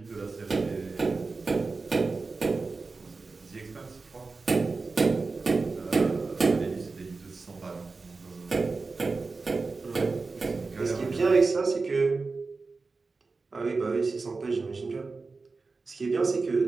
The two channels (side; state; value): left; quieter; 4.0 dB